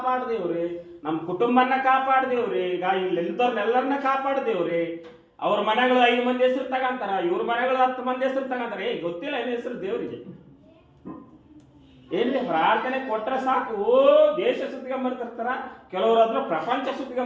ದೇವ್ರಿ, ನಮ್ಮ ಕುಟುಂಬನ ಕಾಪಾಡು ದೇವ್ರಿ, ಈಗ ಇಲ್ಲಿದ್ದವ್ರನ್ನೆಲ್ಲರನ್ನ ಕಾಪಾಡು ದೇವ್ರಿ. ಅವ್ರ ಮನೆಗಳು 5 ಮಂದಿ ಹೆಸರು ತಗಂತಾರ, ಇವ್ರ ಮನೆಗಳು 10 ಮಂದಿ ಹೆಸರು ತಗಂತಾರೆ. ಗೊತ್ತಿಲ್ಲ ಏನ್ ಹೆಸರು ದೇವ್ರಿಗೆ. ಏನ್ರಿ ಪ್ರಾರ್ಥನೆ ಕೊಟ್ರೆ ಸಾಕು, ದೇಶ ಸುತ್ತಿಗೊಂಬರ್ತಿರ್ತಾರ, ಕೆಲವರು ಅದ್ರ ಪ್ರಪಂಚ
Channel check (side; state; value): both; identical; correlation 1.00